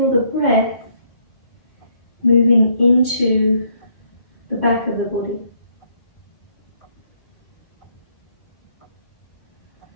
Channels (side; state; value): right; late; 1.8 ms